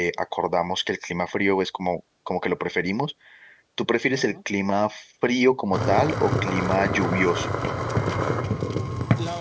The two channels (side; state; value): both; identical; correlation 1.00